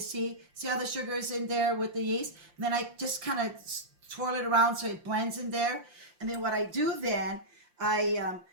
how the sugar is in there with the yeast. And then I just kind of twirl it around so it blends in there. And then what I do then, I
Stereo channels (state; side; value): late; left; 5.7 ms